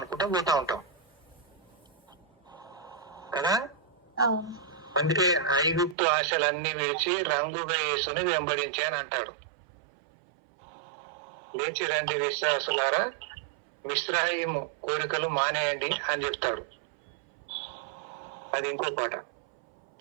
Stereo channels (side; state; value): left; drops out; at 6.0 s